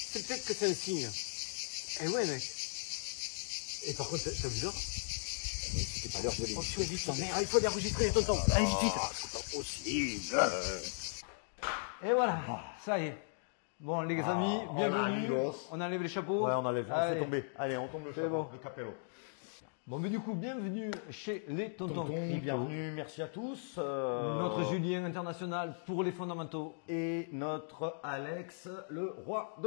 peut-être que c'est un signe. Eh ouais, mec. Et par contre, t'as vu ça? C'est pas l'heure de l'émission. Il faut enregistrer, tonton. Allez, vite, vite. C'est pas possible. Et voilà, ça y est. Bon, les amis, bienvenue. On enlève les chapeaux. Ouais, on enlève, on fait tomber. Allez, on tombe le chapeau, bon. le capello. Bon, mais du coup, bienvenue chez les tontons crypto. Bienvenue, merci à tous. Notre Julien international pour les fondamentaux. Et notre Alex, le roi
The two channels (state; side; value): silent; right; digital silence